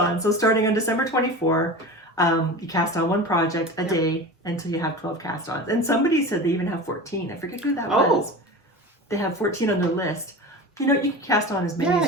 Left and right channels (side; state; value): both; normal; correlation 0.31